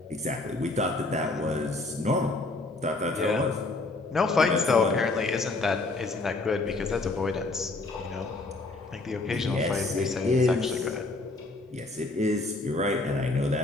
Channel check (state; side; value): quieter; right; 3.2 dB